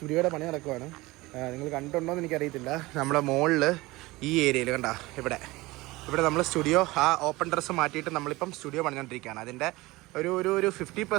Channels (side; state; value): left; quieter; 20.7 dB